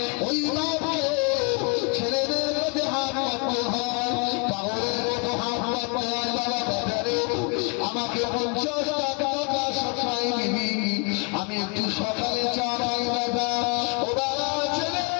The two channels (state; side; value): quieter; right; 33.8 dB